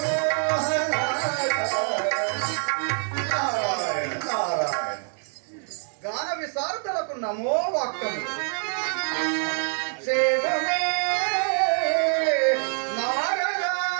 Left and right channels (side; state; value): left; silent; 56 dB below the other